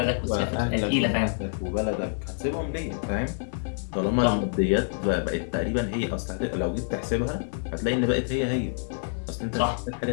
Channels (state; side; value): silent; right; digital silence